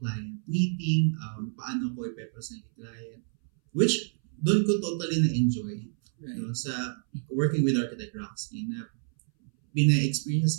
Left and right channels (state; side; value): silent; left; 59 dB below the other